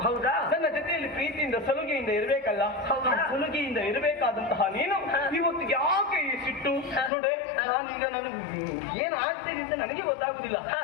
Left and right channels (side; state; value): right; drops out; at 7.1 s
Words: ಹೌದಾ? ನನ್ನ ಜೊತೆಯಲ್ಲಿ ಪ್ರೀತಿಯಿಂದ ಸಲುಗೆಯಿಂದ ಇರಬೇಕಲ್ಲ. ಸಲುಗೆಯಿಂದ ಇರಬೇಕಾದಂತಹ ನೀನು ಇವತ್ತು ಯಾಕೆ ಈ ಸಿಟ್ಟು? ನೋಡೆ, ನಾನೀಗ ನನಗೆ ಏನ್ ಆಗ್ತೇನೆ ಅಂತ ನನಗೆ ಗೊತ್ತಾಗುದಿಲ್ಲ.